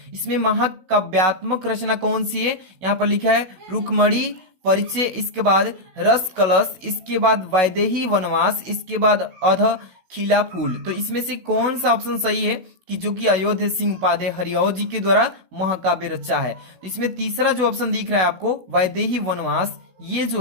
इसमें महाकाव्यात्मक रचना कौन सी है? यहाँ पर लिखा है रुक्मणी परिचय, इसके बाद रस कलश, इसके बाद वैदेही वनवास, इसके बाद अध खिला फूल। तो इसमें से कौन सा ऑप्शन सही है कि जो कि अयोध्या सिंह उपाध्याय हरिओ जी के द्वारा महाकाव्य रचा है? तो इसमें तीसरा जो ऑप्शन दिख रहा है आपको, वैदेही वनवास, ये जो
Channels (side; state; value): left; late; 16 ms